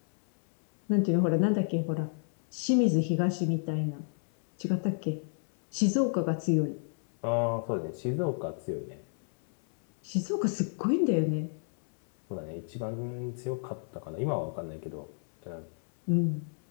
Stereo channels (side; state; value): right; silent; 57 dB below the other